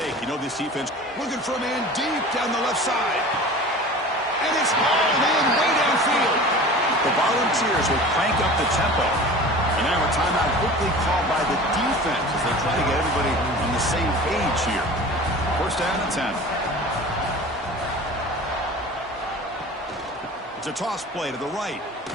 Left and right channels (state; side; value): normal; both; correlation 0.38